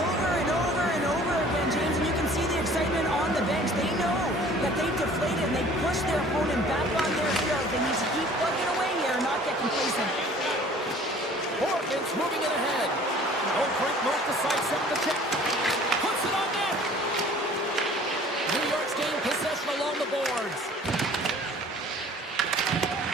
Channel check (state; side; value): normal; both; correlation 0.50